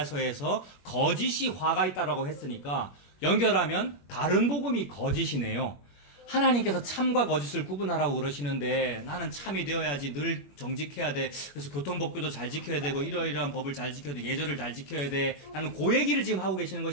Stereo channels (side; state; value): right; late; 21 ms